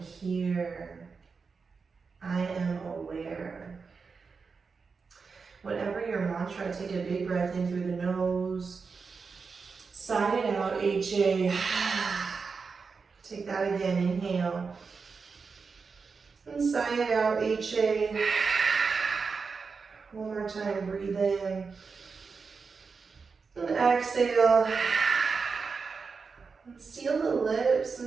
I am aware. Whatever your mantra, take a big breath in through the nose. Sigh it out, HA. Take that again, inhale. And sigh it out, HA. One more time, breathe in. And exhale. And seal the lips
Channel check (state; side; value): quieter; left; 5.0 dB